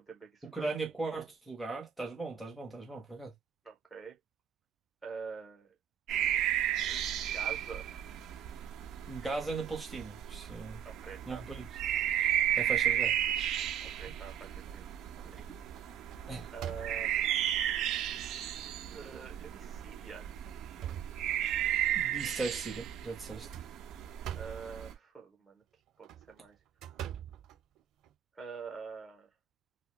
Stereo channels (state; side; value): quieter; left; 9.1 dB